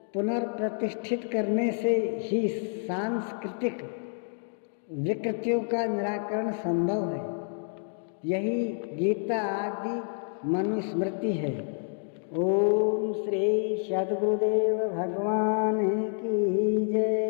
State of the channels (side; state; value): right; silent; 59 dB below the other